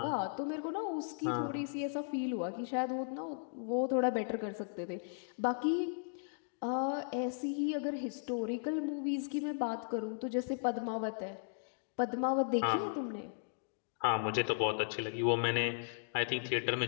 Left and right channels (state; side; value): silent; right; digital silence